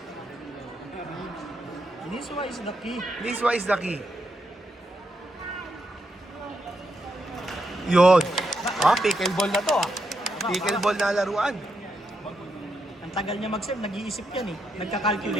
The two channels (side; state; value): both; normal; correlation 0.82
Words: Niswa is the key. Niswa is the key. Yun. Pickleball na to, Pickleball na laruan. Ang tagal niya mag-serve, nag-iisip yan eh.